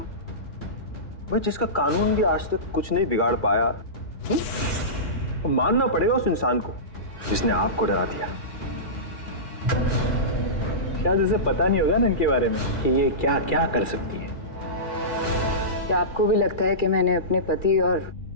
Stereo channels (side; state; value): right; late; 2.3 ms